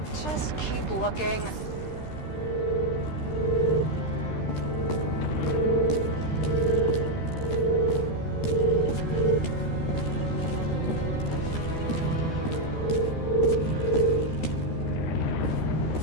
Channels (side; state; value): right; late; 13 ms